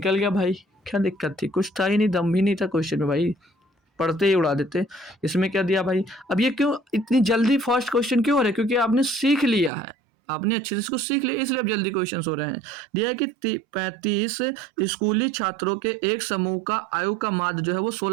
गया भाई, क्या दिक्कत थी? कुछ था ही नहीं, दम भी नहीं था क्वेश्चन में भाई, पढ़ते ही उड़ा देते। इसमें क्या दिया भाई? अब ये क्यों इतनी जल्दी फर्स्ट क्वेश्चन क्यों हो रहा है? क्योंकि आपने सीख लिया है, आपने अच्छे से इसको सीख लिया, इसलिए अब जल्दी क्वेश्चन हो रहे हैं। दिया है कि 35 स्कूली छात्रों के एक समूह का आयु का माध्य जो है वो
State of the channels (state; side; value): drops out; left; at 9.7 s